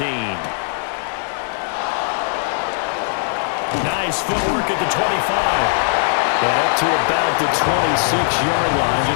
Nice footwork at the 25. And up to about the 26-yard line,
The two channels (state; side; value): silent; right; digital silence